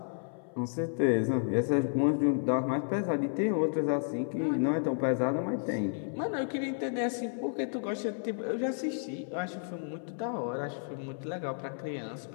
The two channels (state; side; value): silent; right; 57 dB below the other